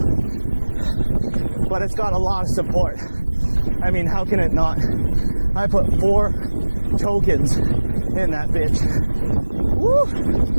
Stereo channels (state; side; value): inverted; both; correlation -1.00